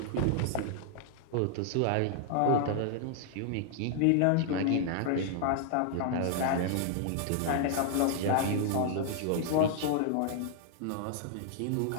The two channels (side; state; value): both; different; correlation -0.01